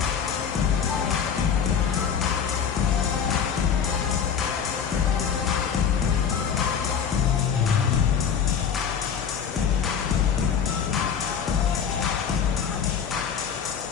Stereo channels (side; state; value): right; quieter; 7.5 dB